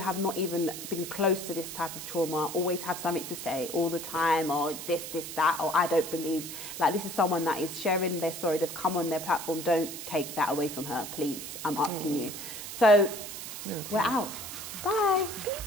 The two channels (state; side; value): noise; right; hiss, 9 dB below the sound